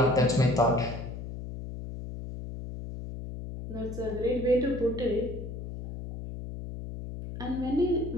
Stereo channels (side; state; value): left; noise; hum, 8 dB below the sound